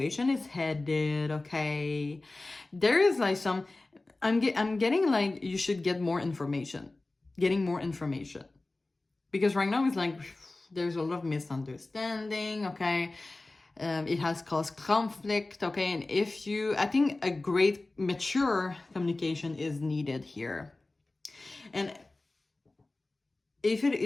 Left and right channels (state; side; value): quieter; right; 3.0 dB